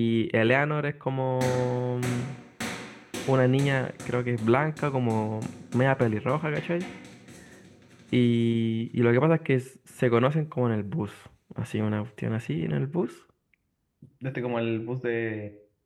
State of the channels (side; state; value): both; identical; correlation 1.00